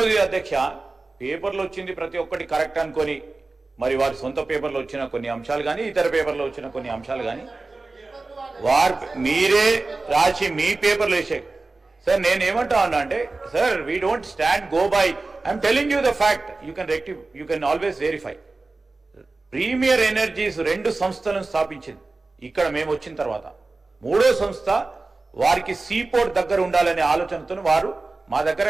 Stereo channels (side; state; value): left; quieter; 3.4 dB